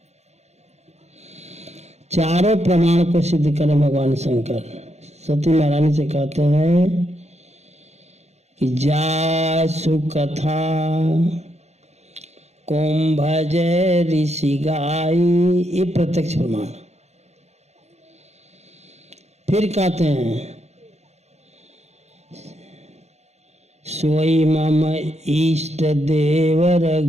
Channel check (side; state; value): left; late; 0.32 ms